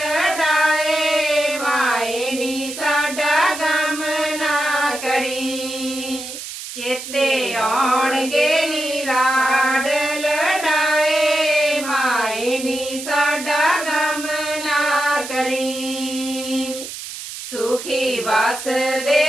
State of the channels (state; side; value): noise; right; hiss, 10 dB below the sound